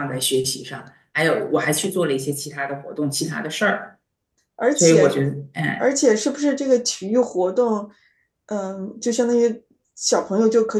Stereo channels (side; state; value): both; identical; correlation 1.00